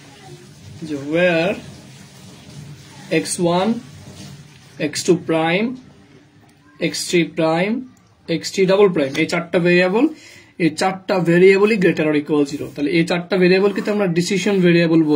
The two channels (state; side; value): identical; both; correlation 1.00